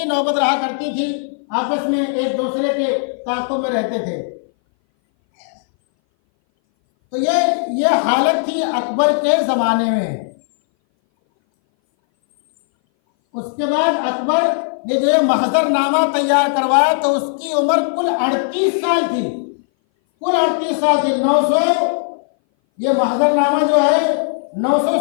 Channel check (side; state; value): right; silent; 60 dB below the other